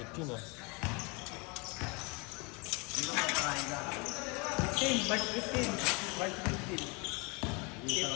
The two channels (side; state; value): right; quieter; 29.9 dB